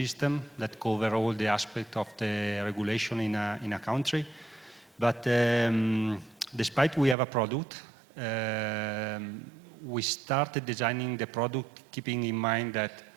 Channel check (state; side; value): drops out; left; at 7.2 s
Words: that covers all the aspects of the regulation in a country. But despite we have a product, we started designing the product keeping in mind that